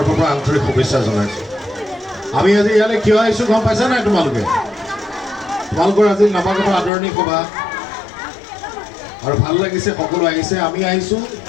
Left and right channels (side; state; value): right; drops out; at 6.9 s